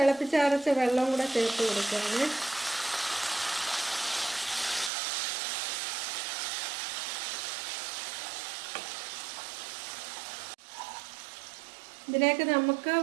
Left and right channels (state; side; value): drops out; left; at 4.9 s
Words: വെള്ളം കൂടെ ചേർത്ത് കൊടുക്കുകയാണ്. ഇതിലേക്ക് നമുക്ക്